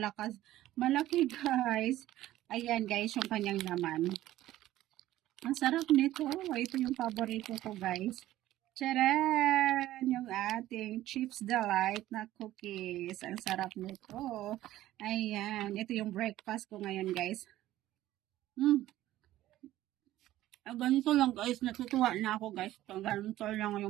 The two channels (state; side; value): quieter; left; 14.7 dB